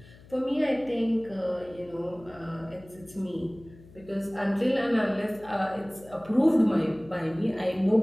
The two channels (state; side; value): noise; left; hum, 22 dB below the sound